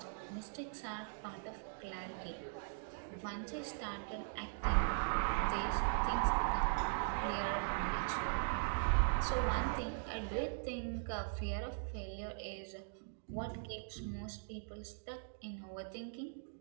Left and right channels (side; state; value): left; silent; digital silence